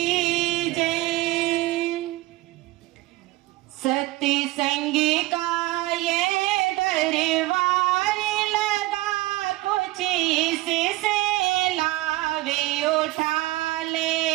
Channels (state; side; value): quieter; left; 18.9 dB